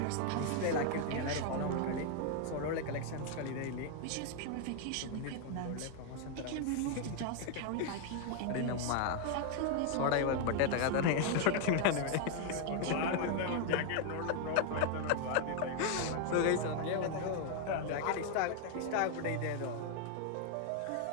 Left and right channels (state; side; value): different; both; correlation 0.00